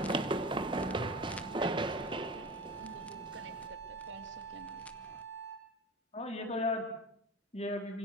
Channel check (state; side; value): normal; both; correlation 0.32